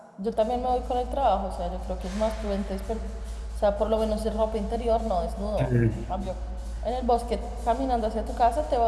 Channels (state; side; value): identical; both; correlation 1.00